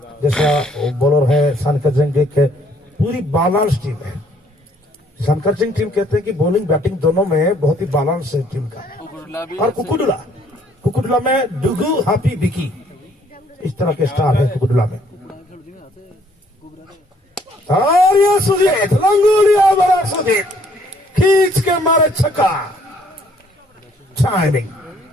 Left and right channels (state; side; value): normal; both; correlation 0.63